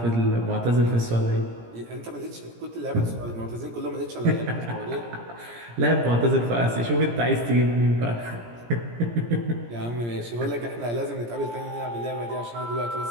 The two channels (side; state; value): left; late; 17 ms